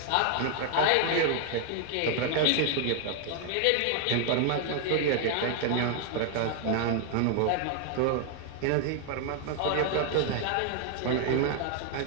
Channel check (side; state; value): both; different; correlation 0.00